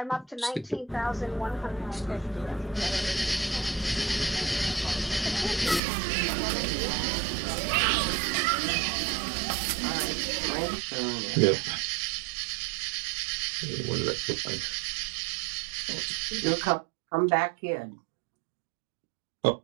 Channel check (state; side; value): drops out; left; at 5.8 s